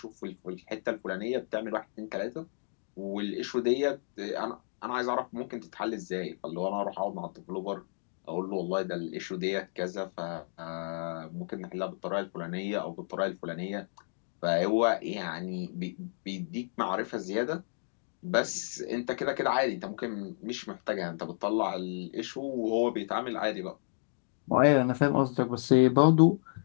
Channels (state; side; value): silent; right; digital silence